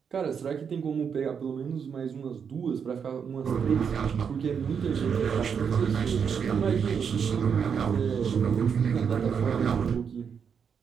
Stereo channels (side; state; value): left; quieter; 6.9 dB